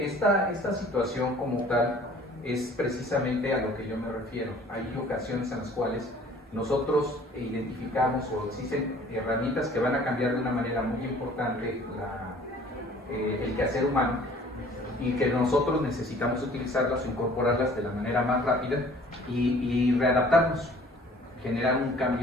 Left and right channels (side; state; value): both; normal; correlation 0.52